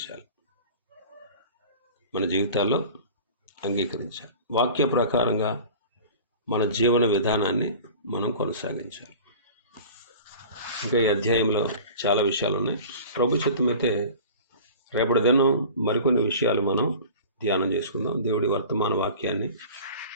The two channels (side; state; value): both; inverted; correlation -0.40